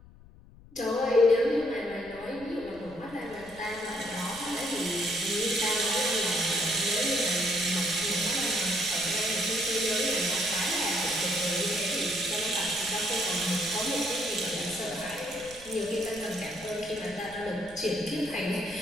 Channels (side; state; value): left; noise; rumble, 21 dB below the sound